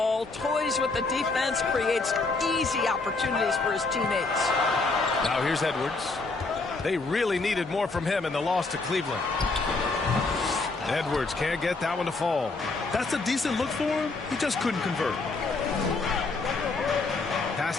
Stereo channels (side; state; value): right; quieter; 3.7 dB